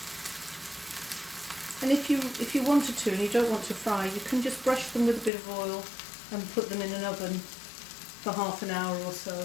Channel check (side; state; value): right; drops out; at 5.3 s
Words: And if you wanted to and you don't want to fry, you can just brush them with a bit of oil and put them in an oven for half an hour or so.